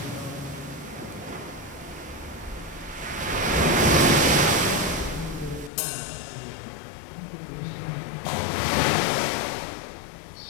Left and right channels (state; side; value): drops out; right; at 5.7 s